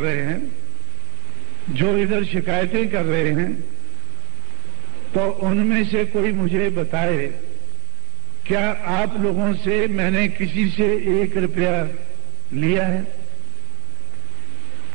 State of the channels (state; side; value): quieter; left; 35.5 dB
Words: हैं, जो इधर शिकायतें कर रहे हैं, तो उनमें से कोई मुझे बताए, क्या आप लोगों से मैंने किसी से 1 रुपया लिया है?